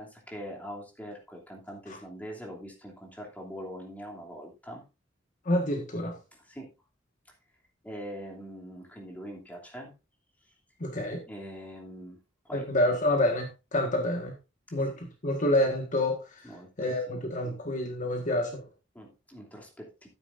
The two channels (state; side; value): normal; both; correlation 0.25